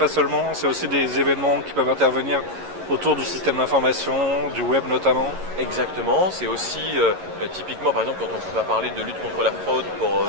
seulement, c'est aussi des événements qui peuvent intervenir autour du système d'information, du web notamment. Exactement, c'est aussi typiquement par exemple quand on va parler de lutte contre la fraude pour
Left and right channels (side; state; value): left; late; 11 ms